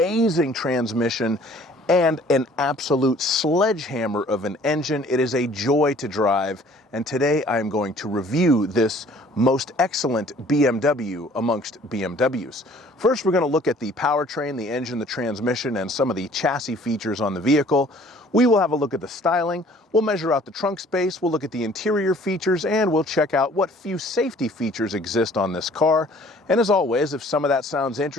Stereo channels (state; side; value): normal; both; correlation 0.54